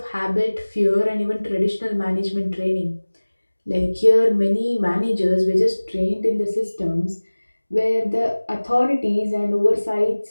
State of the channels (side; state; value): both; inverted; correlation -1.00